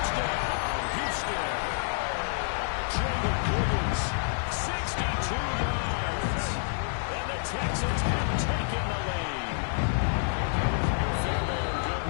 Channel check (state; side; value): silent; right; digital silence